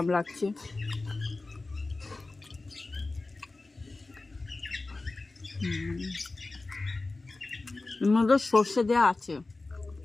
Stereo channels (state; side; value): quieter; right; 3.3 dB